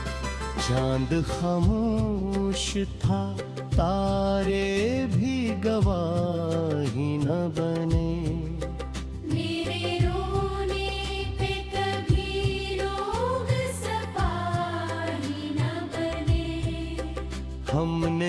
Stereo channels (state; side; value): identical; both; correlation 1.00